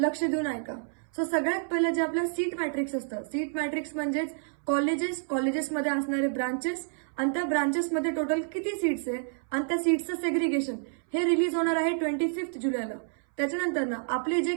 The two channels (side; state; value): left; silent; 59 dB below the other